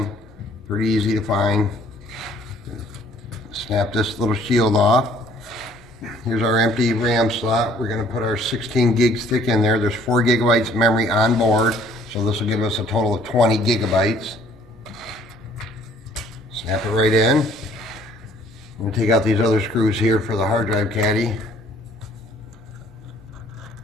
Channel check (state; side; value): noise; right; rumble, 27 dB below the sound